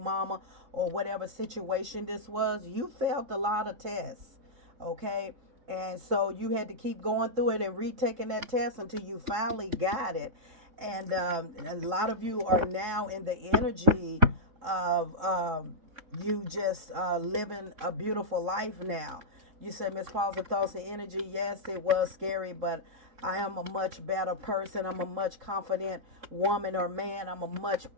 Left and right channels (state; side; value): late; left; 3.7 ms